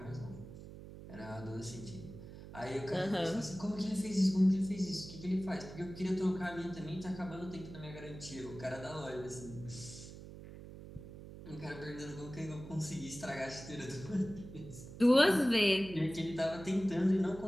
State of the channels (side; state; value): right; noise; hum, 13 dB below the sound